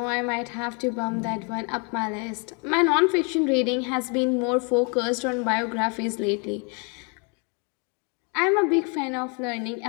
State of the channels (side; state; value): right; quieter; 35.6 dB